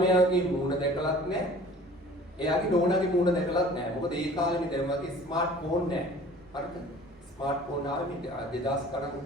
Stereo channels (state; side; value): noise; right; rumble, 27 dB below the sound